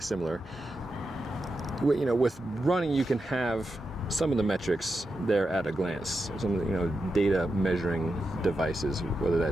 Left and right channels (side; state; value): both; normal; correlation 0.88